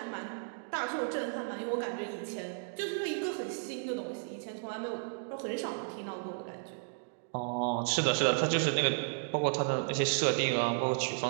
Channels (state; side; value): silent; left; digital silence